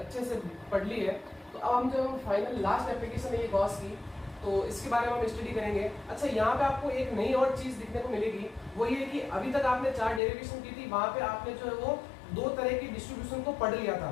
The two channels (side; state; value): right; drops out; at 10.2 s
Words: से पढ़ ली है, तो अब हम जो फाइनल लास्ट एप्लीकेशन है ये गॉस की, तो इसके बारे में हम स्टडी करेंगे। अच्छा, यहाँ पे आपको एक नई और चीज दिखने को मिलेगी, वो ये कि अभी तक आपने चार डेरिवेशन की थी, वहां पे आपने जो है वो दो तरह की डिस्ट्रीब्यूशन को पढ़ लिया था।